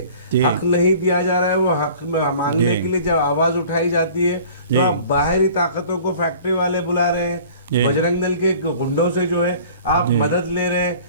حق نہیں دیا جا رہا ہے، وہ حق مانگنے کے لیے جب آواز اٹھائی جاتی ہے تو آپ باہری طاقتوں کو فیکٹری والے بلا رہے ہیں، بجرنگ دل کے گنڈوں سے جو ہے آپ مدد لے رہے ہیں،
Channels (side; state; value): both; inverted; correlation -0.47